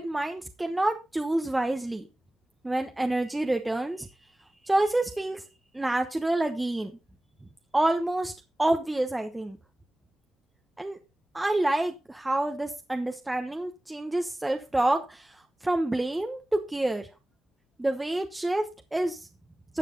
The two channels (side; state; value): both; normal; correlation 0.97